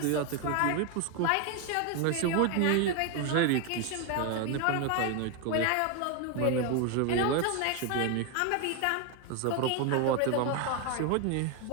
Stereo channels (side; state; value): both; different; correlation 0.01